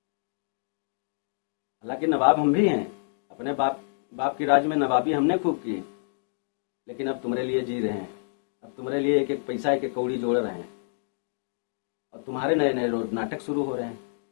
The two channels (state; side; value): silent; right; digital silence